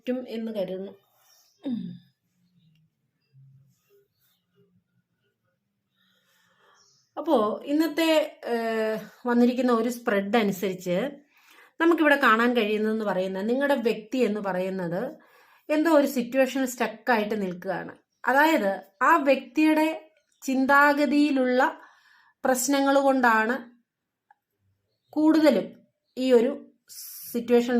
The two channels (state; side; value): identical; both; correlation 1.00